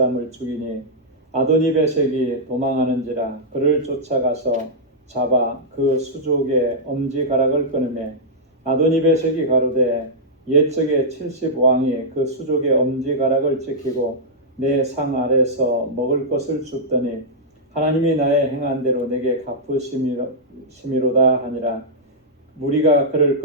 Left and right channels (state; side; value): normal; both; correlation -0.10